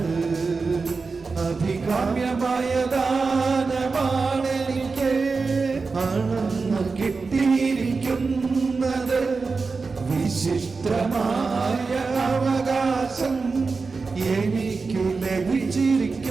അഭികാമ്യമായ ദാനമാണെനിക്ക് അളന്നു കിട്ടിയിരിക്കുന്നത്. വിശിഷ്ടമായ അവകാശം എനിക്കു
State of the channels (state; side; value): quieter; left; 4.4 dB